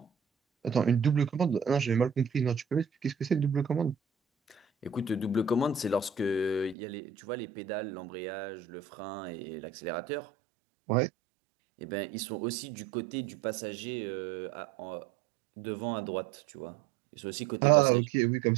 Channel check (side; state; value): left; drops out; at 6.8 s